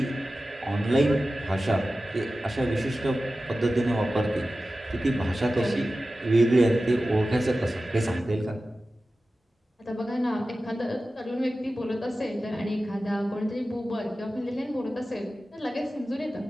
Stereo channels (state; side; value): normal; both; correlation 0.95